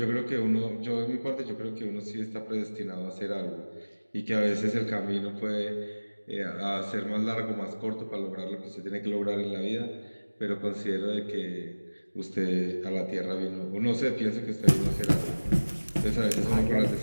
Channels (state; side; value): inverted; both; correlation -1.00